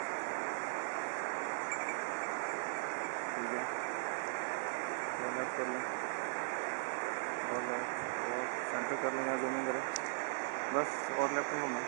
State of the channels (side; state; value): left; silent; digital silence